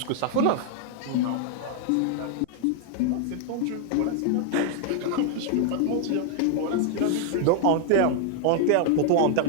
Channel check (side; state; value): both; different; correlation 0.00